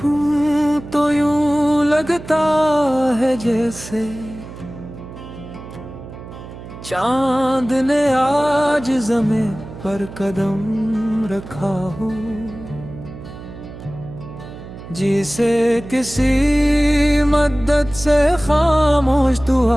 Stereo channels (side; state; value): right; noise; hum, 14 dB below the sound